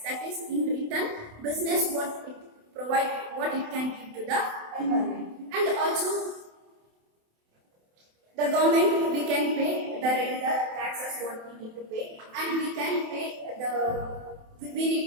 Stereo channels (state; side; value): late; left; 27 ms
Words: That is, in return, business what it can give to the environment. And also the government, we can pay the regular taxes what we need to pay, and we